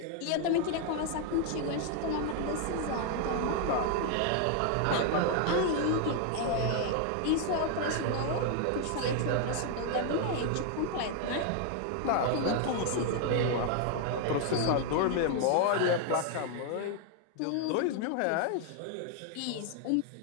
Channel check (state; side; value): different; both; correlation 0.00